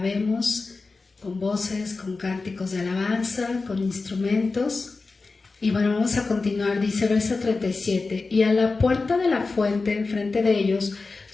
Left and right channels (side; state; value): right; quieter; 3.9 dB